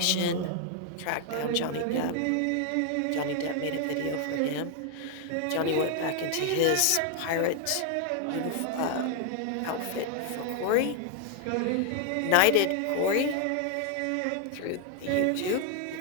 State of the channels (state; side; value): different; both; correlation 0.00